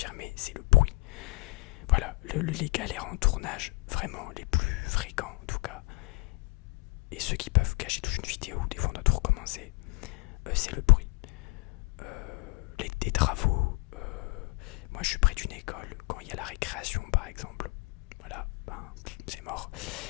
c'est le bruit. Voilà, les galères en tournage, vraiment les plus fréquents en tout cas, et ceux qui peuvent cacher toute une vidéo, des fois on doit tout recommencer, c'est le bruit. Des travaux, moi je suis près d'une école, quand il y a la récréation par exemple, voilà, c'est mort.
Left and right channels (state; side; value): quieter; right; 25.8 dB